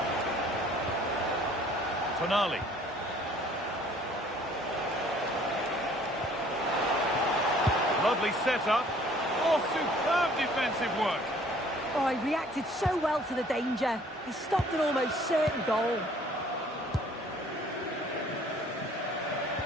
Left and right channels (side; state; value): both; normal; correlation 0.56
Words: Tonali. Lovely setup. Oh, superb defensive work. Oh, he reacted so well to the danger. He stopped an almost certain goal.